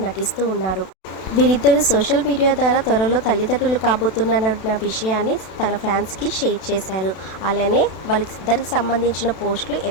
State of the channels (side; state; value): right; late; 32 ms